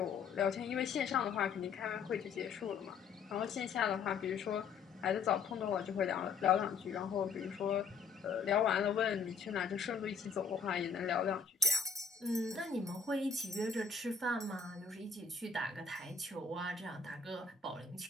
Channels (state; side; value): quieter; right; 5.5 dB